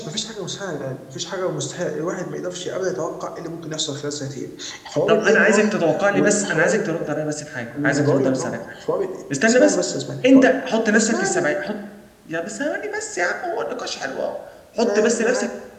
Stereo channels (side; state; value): both; identical; correlation 1.00